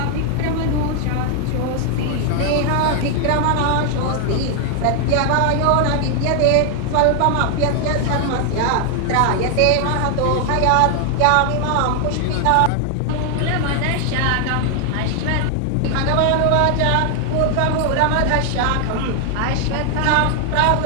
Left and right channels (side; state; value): both; different; correlation 0.00